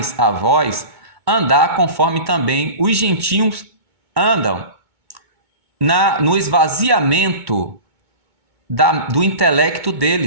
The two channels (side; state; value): left; late; 2.2 ms